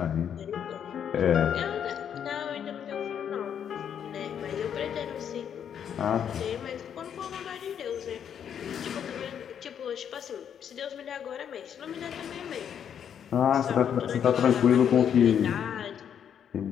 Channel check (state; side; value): quieter; right; 8.6 dB